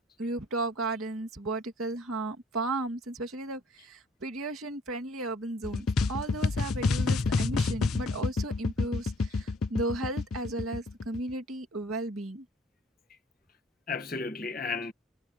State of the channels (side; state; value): both; normal; correlation 0.57